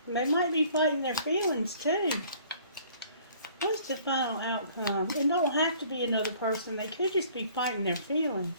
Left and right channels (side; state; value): both; inverted; correlation -0.55